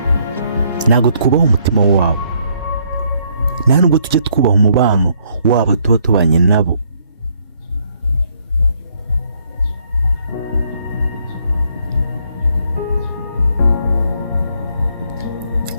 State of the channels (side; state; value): both; inverted; correlation -0.69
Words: Ntabwo twubaha umutima wabo, nta nubwo tujye twubaha umubano wabo tuba tubanye nabo.